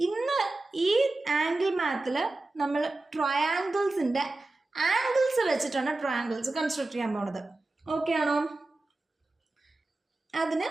ഇന്ന് ഈ ആംഗിൾ മാത്തിൽ നമ്മൾ ട്രയാങ്കിൾസിൻ്റെ ആംഗിൾസ് വെച്ചിട്ടാണ് ട്രയാങ്കിൾസ് കൺസ്ട്രക്ട് ചെയ്യാൻ പോകുന്നത്. ഓക്കെ ആണോ. അതിന്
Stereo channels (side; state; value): left; quieter; 3.0 dB